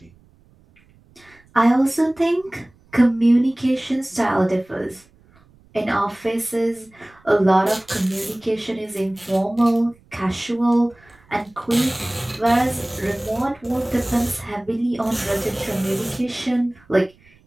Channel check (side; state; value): right; noise; rumble, 30 dB below the sound